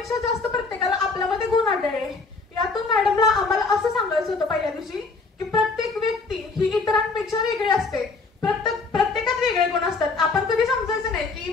जास्त प्रत्येकाला आपल्यामध्ये गुण आढळले. यातून मॅडमला आम्हाला असं सांगायचं होतं पहिल्या दिवशी की प्रत्येक व्यक्ती ही इतरांपेक्षा वेगळी असते. प्रत्येकात वेगळे गुण असतात. आपण कधी समजायचं नाही की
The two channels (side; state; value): right; quieter; 4.0 dB